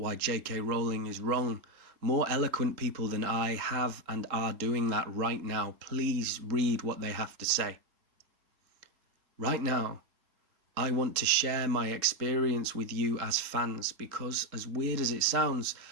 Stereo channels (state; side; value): late; left; 3.7 ms